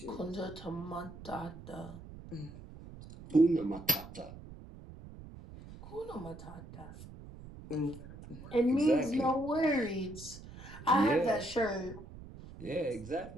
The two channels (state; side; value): noise; right; rumble, 15 dB below the sound